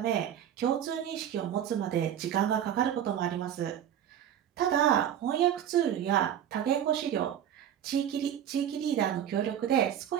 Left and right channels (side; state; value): left; quieter; 10.0 dB